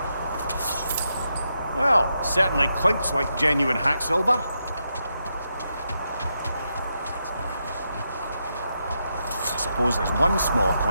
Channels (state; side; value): inverted; both; correlation -0.83